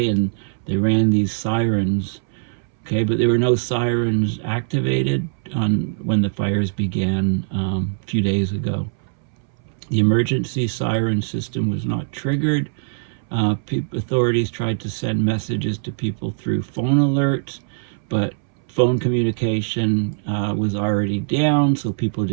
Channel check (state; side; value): silent; left; 65 dB below the other